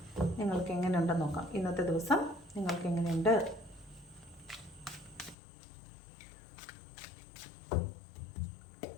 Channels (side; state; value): right; drops out; at 5.4 s